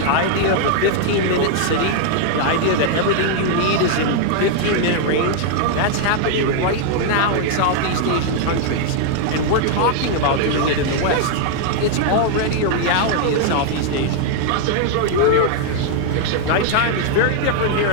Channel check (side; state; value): both; different; correlation 0.00